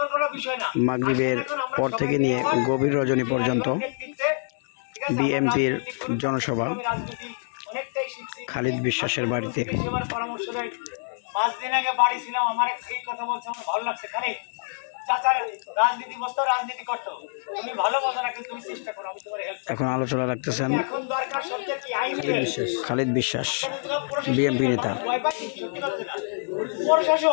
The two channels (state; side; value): silent; right; 61 dB below the other